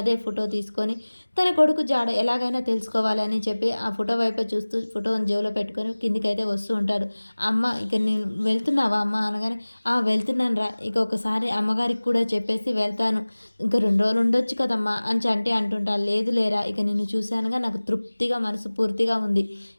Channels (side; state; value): both; inverted; correlation -1.00